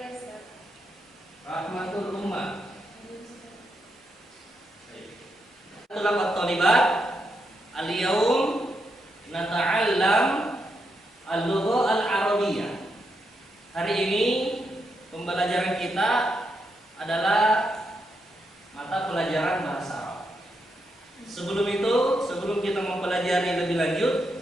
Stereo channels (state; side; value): normal; both; correlation 0.82